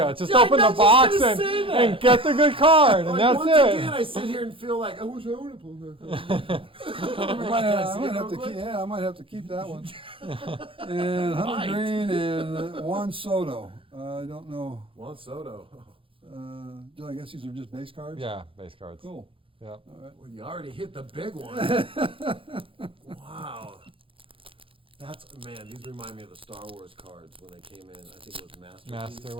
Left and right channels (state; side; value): late; left; 0.26 ms